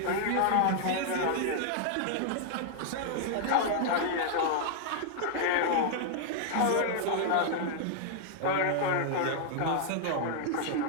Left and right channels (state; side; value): different; both; correlation -0.01